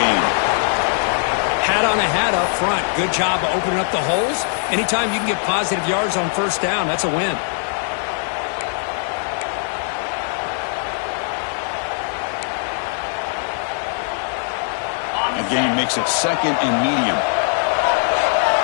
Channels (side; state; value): right; silent; 65 dB below the other